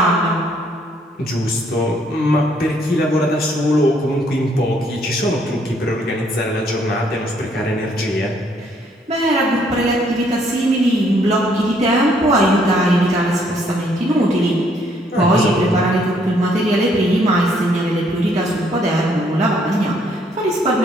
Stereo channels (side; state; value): both; normal; correlation 0.67